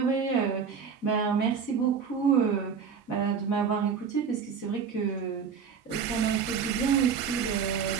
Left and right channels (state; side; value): quieter; left; 6.4 dB